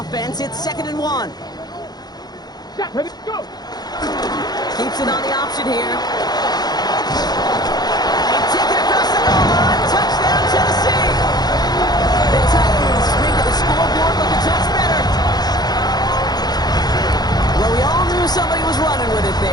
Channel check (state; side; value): late; right; 0.19 ms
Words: It's 2nd and 1. Set, ready, go. Keeps it on the option here. They take it across the goal line. Touchdown, Tennessee. The Titans spring to the scoreboard looking touch better. Well, we all knew somebody was running with it